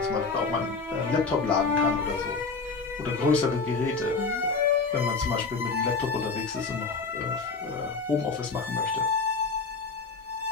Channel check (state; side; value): quieter; right; 4.4 dB